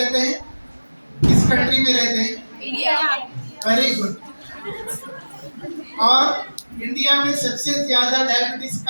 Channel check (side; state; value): both; inverted; correlation -1.00